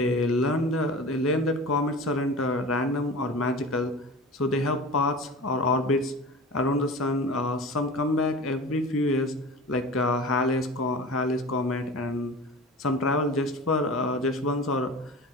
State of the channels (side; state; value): both; normal; correlation 0.35